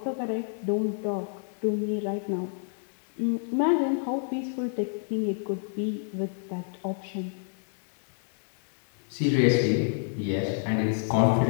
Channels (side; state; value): right; silent; digital silence